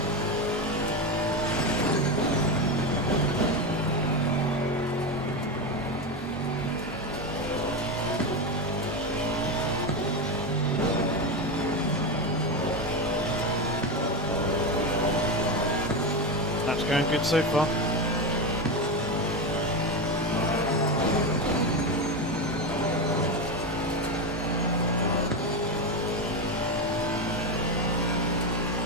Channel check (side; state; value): both; normal; correlation 0.14